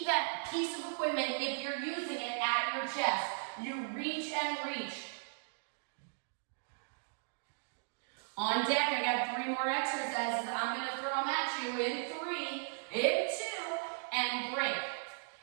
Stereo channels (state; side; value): silent; left; digital silence